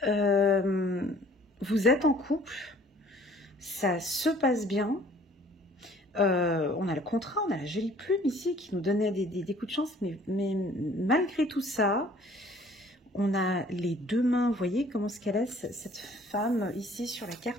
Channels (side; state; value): both; normal; correlation 0.55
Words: vous êtes en couple. Ça se passe bien. On a le contrat, on a la jolie plume ici qui nous donnait des coups de chance. Mais malgré tout ça... On a les deux mains, vous voyez comment ce qu'elle est, cette femme ici sur la